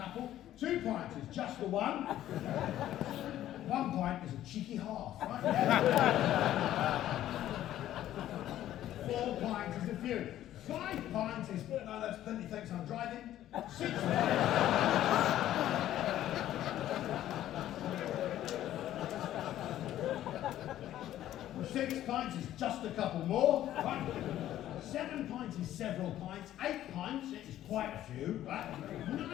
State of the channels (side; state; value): right; quieter; 12.8 dB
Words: 2 pints is just the one. 1 pint is a cheeky half, right? Yeah. 4 pints is a few. 5 pints is, no, that's plenty, thanks, I'm driving. 6 pints is just a couple more, right? 7 pints is several pints. 8 pints is quite a few, right?